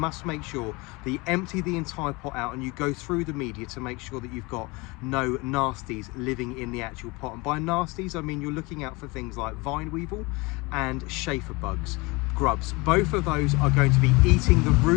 make sure that you empty the entire pot out and you go through the media to make sure that you've got no nasties living in the actual pot. And by nasties, I mean you're looking out for things like vine weevil and chafer bugs, grubs. Both of those are going to be eating the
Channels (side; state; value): right; quieter; 25.4 dB